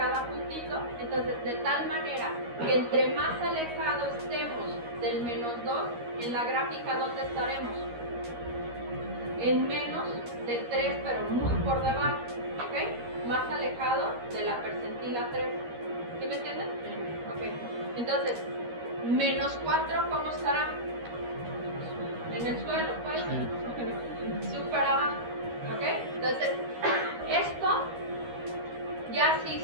puntito. Entonces, de tal manera que entre más alejados estemos del -2, en la gráfica, ¿dónde estaremos? En menos de 3, pero muy por debajo, ¿ok? Más alejado de la percentila 3. ¿Sí me entienden? Ok. Entonces, -4, ¿cómo estará? En el suelo, pues. Súper abajo, ¿ok? Entonces, esto, ya sí,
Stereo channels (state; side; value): late; left; 13 ms